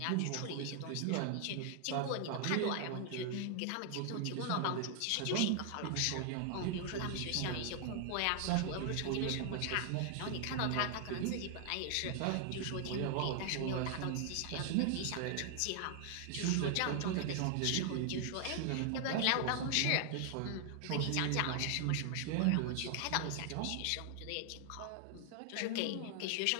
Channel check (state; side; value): different; both; correlation 0.00